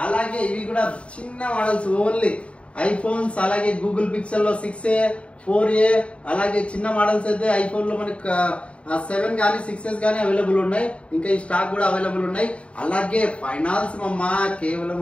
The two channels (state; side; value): late; right; 0.061 ms